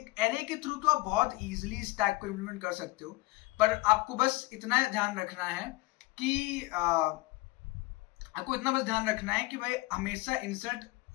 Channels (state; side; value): quieter; right; 21.2 dB